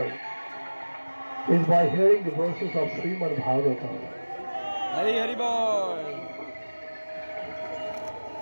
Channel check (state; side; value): inverted; both; correlation -1.00